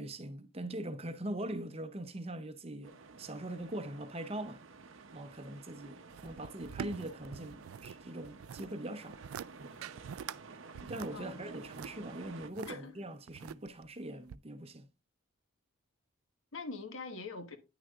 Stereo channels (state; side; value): normal; both; correlation 0.46